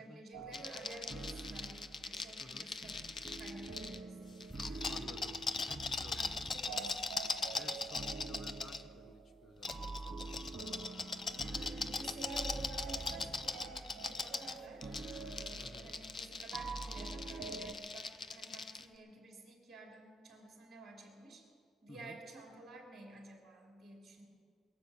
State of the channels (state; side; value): normal; both; correlation 0.77